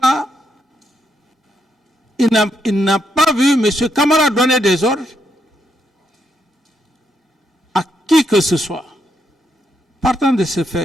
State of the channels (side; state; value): both; normal; correlation 0.78